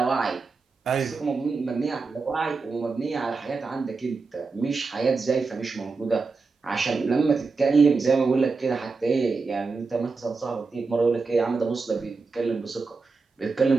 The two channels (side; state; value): left; quieter; 4.3 dB